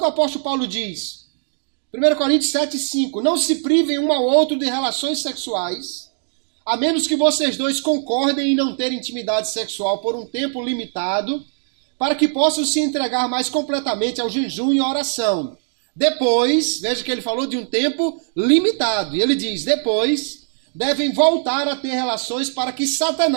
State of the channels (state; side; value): silent; left; digital silence